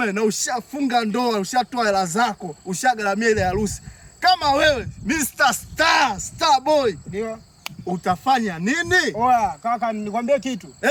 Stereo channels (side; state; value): both; identical; correlation 1.00